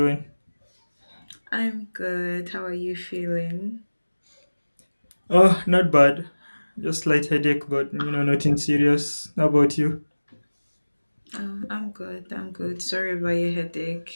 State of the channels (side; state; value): both; inverted; correlation -1.00